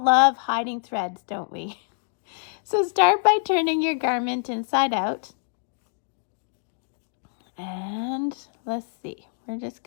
love hiding threads, don't we? So start by turning your garment inside out. And let's see, we're just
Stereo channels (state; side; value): silent; right; digital silence